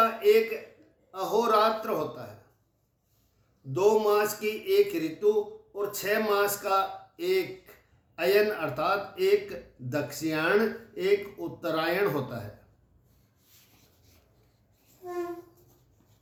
एक अहोरात्र होता है। 2 मास की एक ऋतु और 6 मास का एक अयन अर्थात एक दक्षिणायन एक उत्तरायण होता है।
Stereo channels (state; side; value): identical; both; correlation 1.00